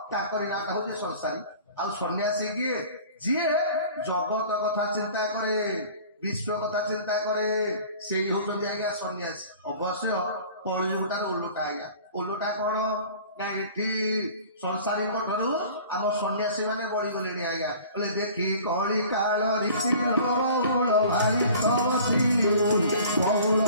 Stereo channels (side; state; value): both; inverted; correlation -0.45